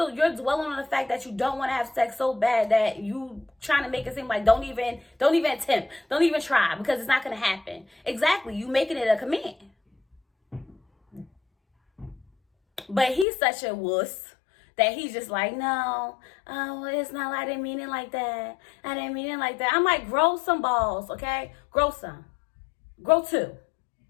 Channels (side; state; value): right; drops out; at 13.2 s